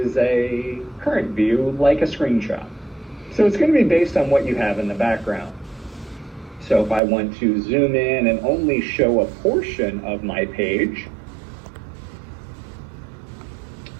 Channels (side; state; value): left; drops out; at 7.0 s